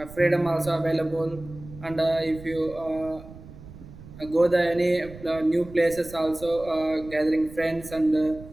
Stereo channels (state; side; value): noise; right; rumble, 17 dB below the sound